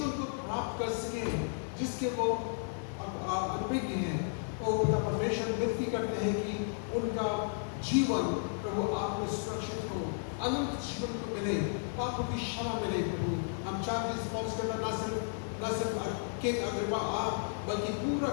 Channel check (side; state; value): right; silent; digital silence